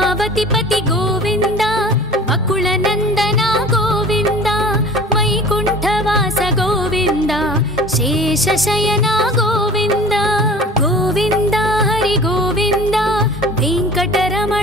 गोविन्द वकुलनन्दन गोविन्द वैकुण्ठवास गोविन्द शेषशयन गोविन्द गोविन्द हरि गोविन्द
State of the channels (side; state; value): both; normal; correlation 0.42